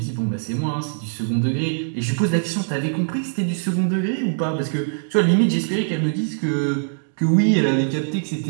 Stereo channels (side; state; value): left; silent; digital silence